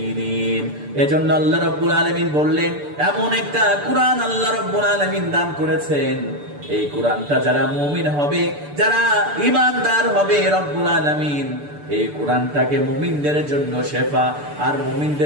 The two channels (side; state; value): left; late; 6.8 ms